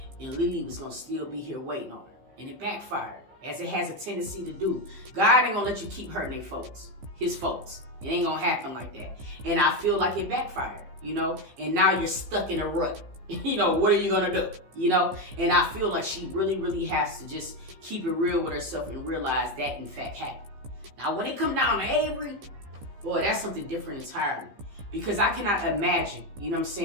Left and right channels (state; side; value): late; left; 15 ms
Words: and Lily was going to still be here waiting on her. And it backfired, as it has a tendency to do. God ain't going to let you keep hurting his folks. It ain't going to happen like that. And I feel like it backfired, you know? And now you're stuck in a rut. You know, what are you going to do? You know? And I feel like she really, really has to just keep it real with herself and realize that, in fact, happened. Now, when it come down to Avery, boy, that's something different entirely. Because I cannot imagine, you know what I'm